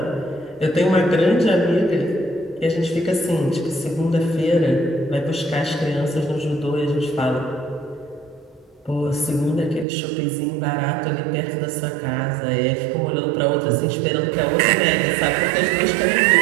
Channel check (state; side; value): drops out; left; at 9.9 s